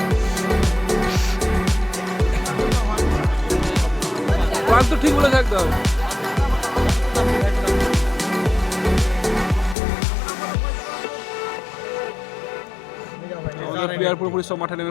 তো ঠিক বলে থাকতে হবে। প্লেয়ার পুরোপুরি সব মাঠে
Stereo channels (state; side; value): drops out; right; at 9.8 s